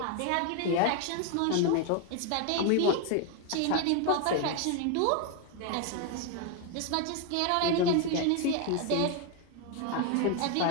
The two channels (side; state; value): both; different; correlation 0.01